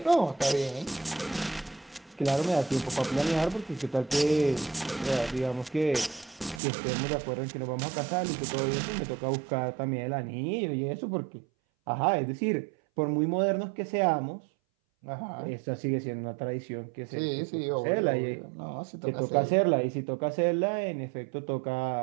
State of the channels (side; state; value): left; drops out; at 6.6 s